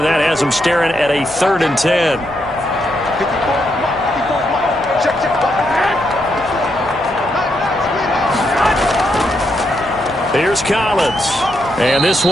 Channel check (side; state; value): left; noise; hum, 21 dB below the sound